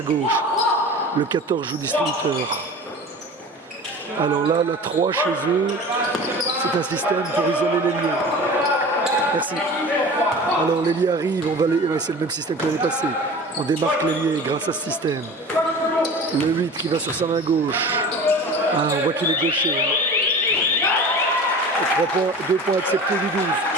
Le 14 joue distributeur. Alors là, la 3 chez eux, c'est un système pour isoler l'ailier. Merci. Alors l'ailier arrive, c'est le même système que l'année passée. On démarque l'ailier grâce à ce système. Le 8 qui va sur sa main gauche. Ah, on voit qu'il est gaucher. 3 points, 2 points acceptés du 12.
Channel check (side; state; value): both; normal; correlation 0.37